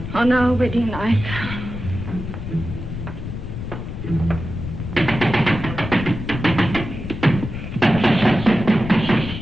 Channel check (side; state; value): left; noise; rumble, 7 dB below the sound